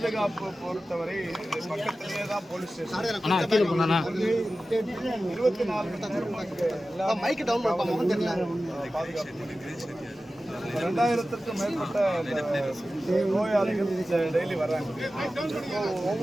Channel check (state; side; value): normal; both; correlation 0.94